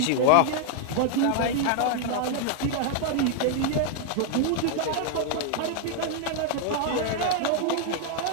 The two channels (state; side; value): different; both; correlation 0.00